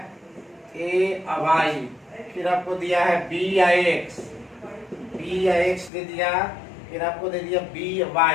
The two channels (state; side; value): drops out; right; at 5.9 s